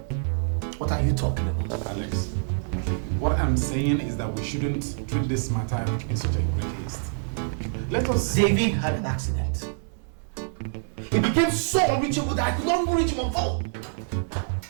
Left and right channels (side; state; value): left; silent; digital silence